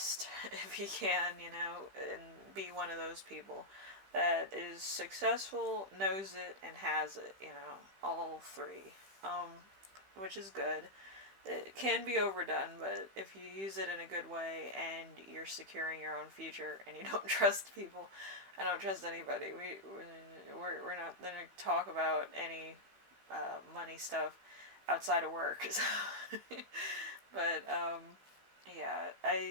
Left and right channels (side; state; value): left; late; 15 ms